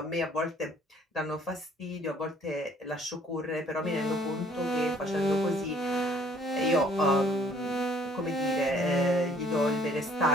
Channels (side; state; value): both; normal; correlation 0.59